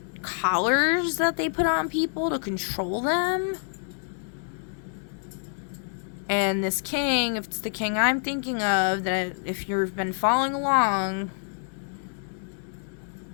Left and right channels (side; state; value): right; silent; 60 dB below the other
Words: collars that they put on people to control them. And this king, if it's the king I'm thinking of, that if you've been following along,